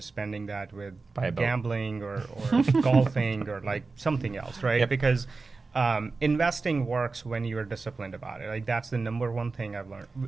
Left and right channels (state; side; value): quieter; left; 4.0 dB